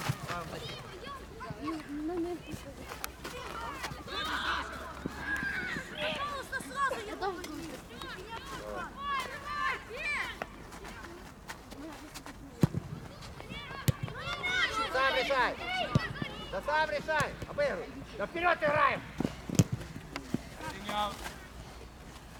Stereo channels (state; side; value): identical; both; correlation 1.00